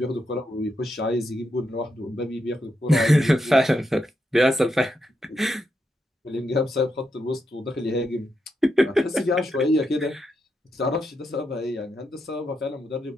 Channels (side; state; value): both; normal; correlation 0.83